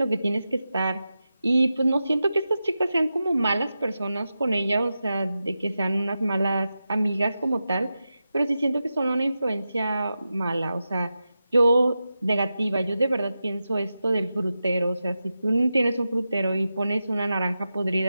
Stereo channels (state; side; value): inverted; both; correlation -0.91